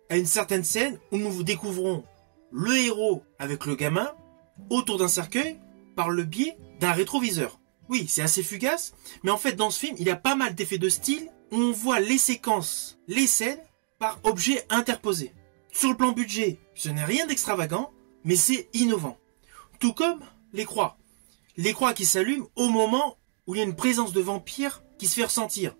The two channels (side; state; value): left; silent; digital silence